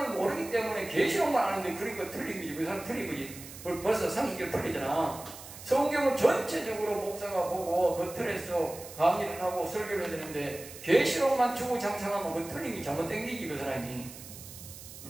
모르기 때문에 계시록만 아는데 그러니까 틀린 거지. 그 사람 틀린 거지. 벌써 상식적으로 틀리잖아. 성경을 전체적으로 목사가 보고 그 틀에서 강의를 하고 설교를 해야 되는데 계시록만 주구장창하면 그 틀린 게 잘못된 게지 그 사람이.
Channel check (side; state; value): right; noise; hiss, 15 dB below the sound